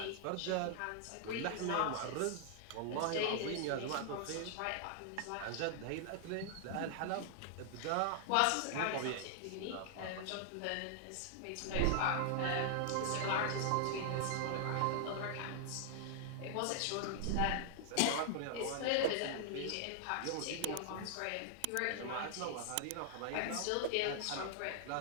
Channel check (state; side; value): different; both; correlation 0.00